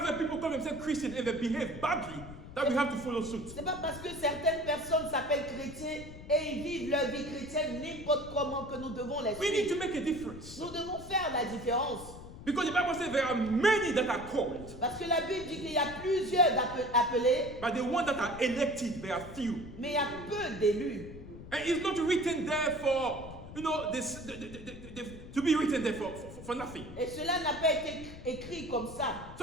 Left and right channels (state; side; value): noise; left; rumble, 13 dB below the sound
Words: people call themselves Christian and they behave badly that we have to follow suit. C'est pas parce que certaines personnes s'appellent chrétiens et ils vivent leur vie chrétienne n'importe comment que nous devons les We need to suivre. make a difference. Nous devons faire la différence. Because the Bible says there are many that are called, Parce que la Bible dit qu'il y a plusieurs appelés, but the ones that are elected, there are few. mais il y a peu d'élus. And it's not written there for, to be written there for nothing. Et cela n'a pas été écrit comme ça.